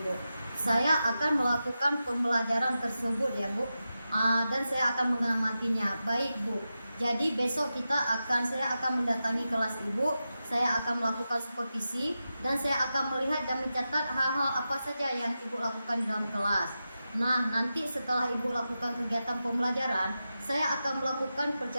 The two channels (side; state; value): both; inverted; correlation -0.91